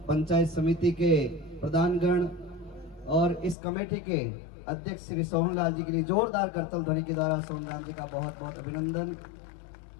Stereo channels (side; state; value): right; drops out; at 3.6 s